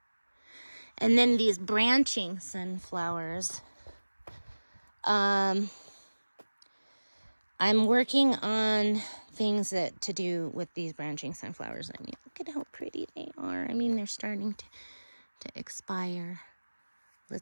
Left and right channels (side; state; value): both; inverted; correlation -1.00